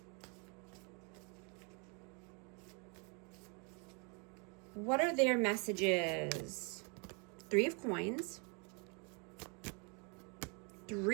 What are their messages? 3 of Coins,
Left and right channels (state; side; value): quieter; left; 35.1 dB